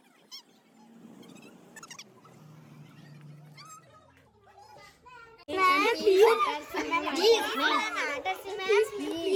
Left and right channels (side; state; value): both; identical; correlation 1.00